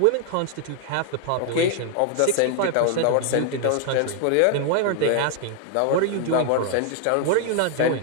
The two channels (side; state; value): both; different; correlation 0.00